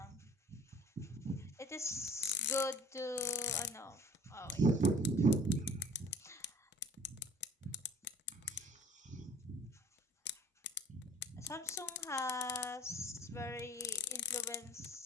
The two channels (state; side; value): normal; both; correlation 0.51